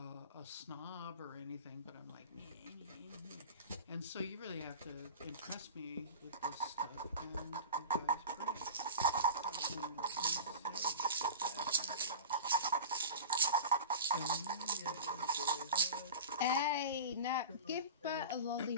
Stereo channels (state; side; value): inverted; both; correlation -0.32